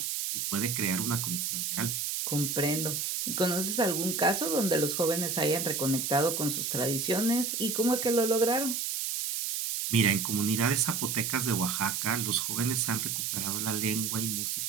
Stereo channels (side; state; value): right; noise; hiss, 1 dB below the sound